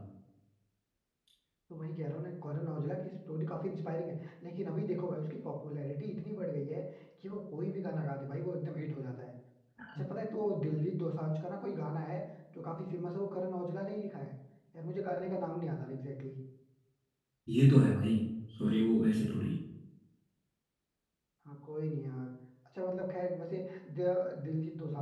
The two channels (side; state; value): both; identical; correlation 1.00